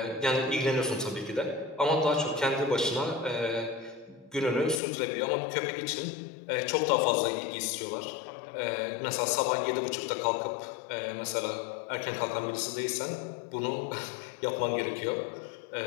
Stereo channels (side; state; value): right; drops out; at 4.8 s